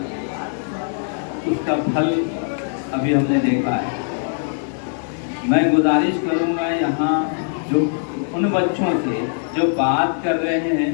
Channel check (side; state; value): right; silent; digital silence